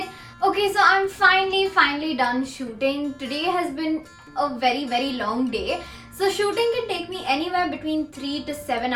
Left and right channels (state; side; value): identical; both; correlation 1.00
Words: Okay, so I'm finally done shooting. Today has been a very long day. So shooting can take me anywhere between 3 to 7